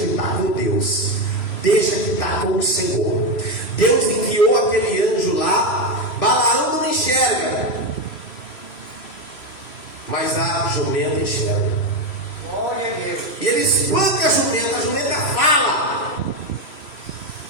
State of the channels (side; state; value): right; late; 3.0 ms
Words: está com Deus. Deixa que está com o Senhor. Deus enviou aquele anjo lá. Balaão não enxerga, mas a jumenta enxerga. Glória a Deus. E ele espanca a jumenta fala: